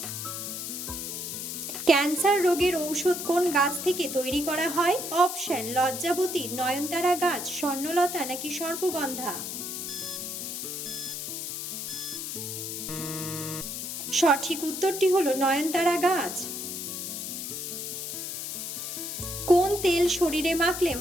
ক্যান্সার রোগের ঔষধ কোন গাছ থেকে তৈরি করা হয়? অপশন লজ্জাবতী, নয়নতারা গাছ, স্বর্ণলতা নাকি সর্পগন্ধা। সঠিক উত্তরটি হলো নয়নতারা গাছ। কোন তেল শরীরে মাখলে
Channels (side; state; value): left; noise; hiss, 5 dB below the sound